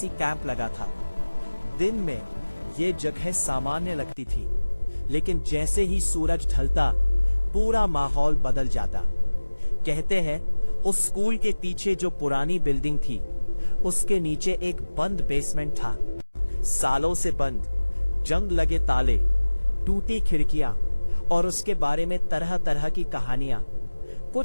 कैंप लगा था। दिन में ये जगह सामान्य लगती थी, लेकिन जैसे ही सूरज ढलता पूरा माहौल बदल जाता। कहते हैं उस स्कूल के पीछे जो पुरानी बिल्डिंग थी, उसके नीचे एक बंद बेसमेंट था। सालों से बंद, जंग लगे ताले, टूटी खिड़कियां और उसके बारे में तरह तरह की कहानियां।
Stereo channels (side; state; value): both; inverted; correlation -1.00